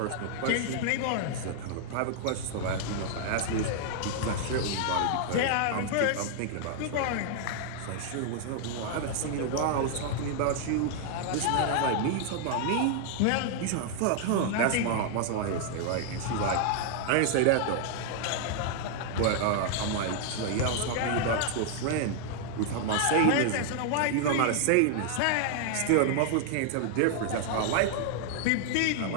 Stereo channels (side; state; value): both; different; correlation 0.00